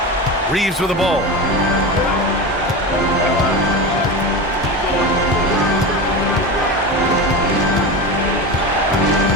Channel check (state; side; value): normal; both; correlation 0.24